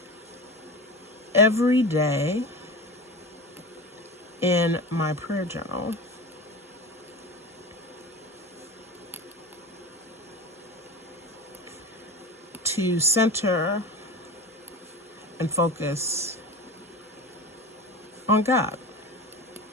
every day in my prayer journal to center and focus on God.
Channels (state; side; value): normal; both; correlation 0.29